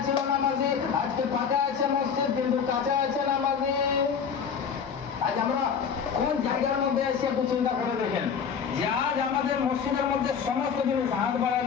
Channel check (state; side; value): quieter; right; 6.8 dB